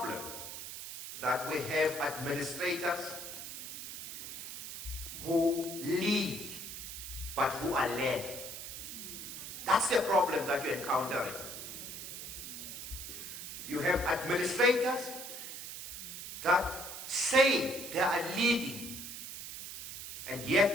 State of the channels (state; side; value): noise; right; hiss, 9 dB below the sound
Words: that we have administrators who lead but who are led. That's the problem that you're encountering. You have administrators that say they are leading, and